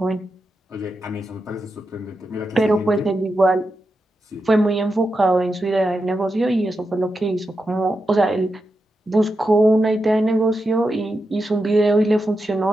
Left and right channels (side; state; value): both; normal; correlation 0.88